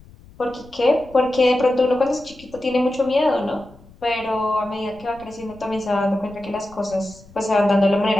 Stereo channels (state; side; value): noise; left; rumble, 24 dB below the sound